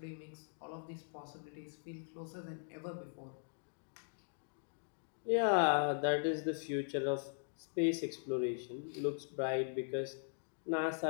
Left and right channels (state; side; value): silent; right; digital silence